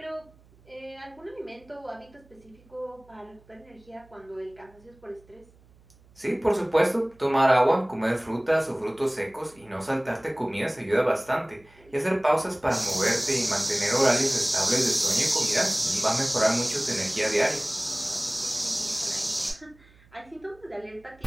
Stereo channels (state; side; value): noise; right; hum, 28 dB below the sound